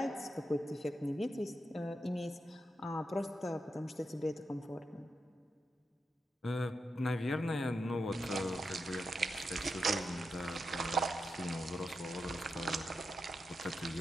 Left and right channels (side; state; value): both; normal; correlation 0.87